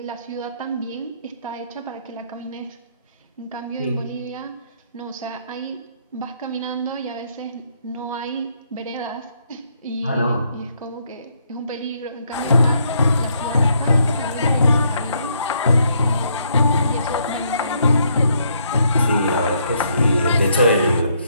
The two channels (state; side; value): inverted; both; correlation -0.72